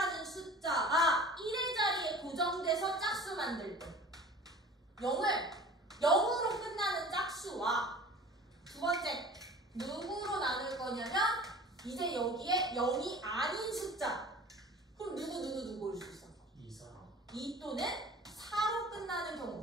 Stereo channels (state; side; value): normal; both; correlation 0.43